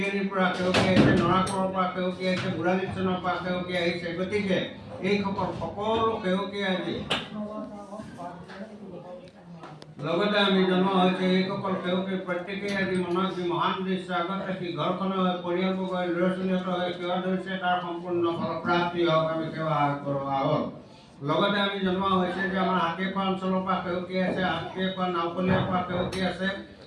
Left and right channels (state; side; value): identical; both; correlation 1.00